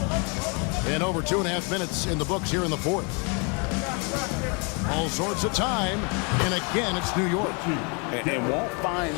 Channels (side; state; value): right; quieter; 34.3 dB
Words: And over 2.5 minutes in the books here in the 4th. All sorts of time. And again, it's New York. And won't find